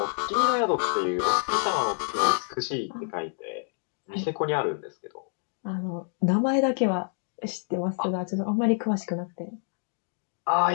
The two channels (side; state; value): right; silent; 60 dB below the other